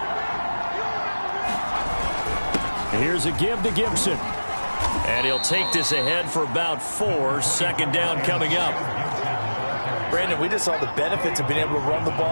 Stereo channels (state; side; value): inverted; both; correlation -1.00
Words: Here's a give to Gibson. And he'll take this ahead for about 4. 2nd down coming up. Brandon, we just saw the benefits of being able to run the